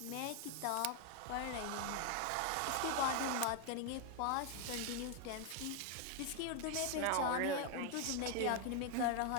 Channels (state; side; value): different; both; correlation 0.00